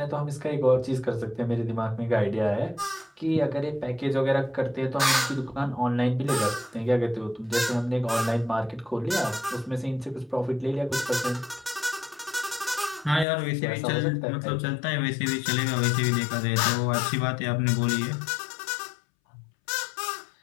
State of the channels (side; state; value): right; drops out; at 13.2 s